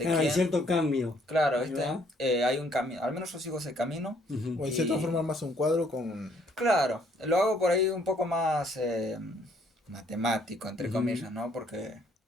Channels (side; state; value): both; normal; correlation 0.65